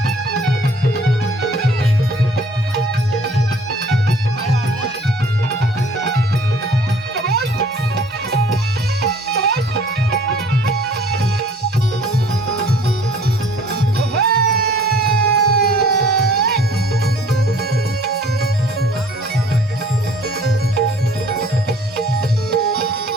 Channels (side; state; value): both; normal; correlation 0.54